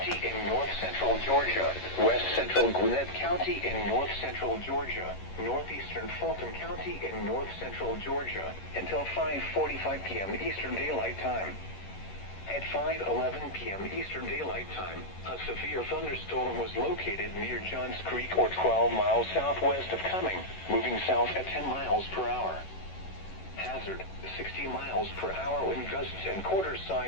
in north central Georgia, west central Gwinnett County in north central Georgia, northeastern Fulton County in north central Georgia, until 5:45 p.m. Eastern Daylight Time. At 5:11 p.m. Eastern Daylight Time, a severe thunderstorm was located near Johns Creek or 12 miles southwest of Cumming, moving south at 10 miles per hour. Hazard, 60 miles per hour wind gusts and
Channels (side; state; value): right; late; 11 ms